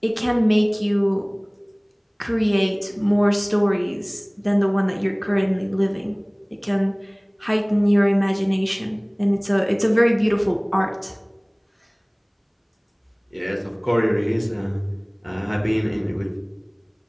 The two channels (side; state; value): both; identical; correlation 1.00